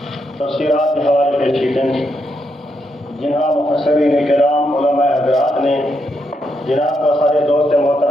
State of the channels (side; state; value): both; normal; correlation 0.80